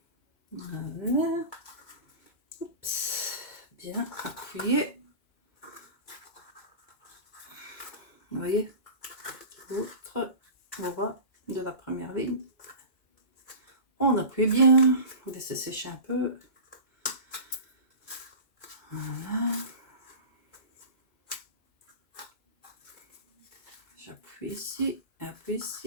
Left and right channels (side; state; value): right; late; 2.5 ms